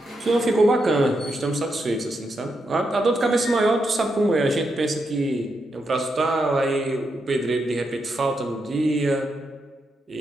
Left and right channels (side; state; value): both; normal; correlation 0.83